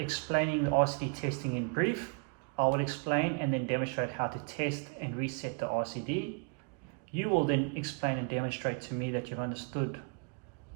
the RCD testing in brief. I will explain and then demonstrate how to test and reset the RCD. You will then explain and demonstrate to me that you've understood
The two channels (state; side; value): quieter; left; 37.9 dB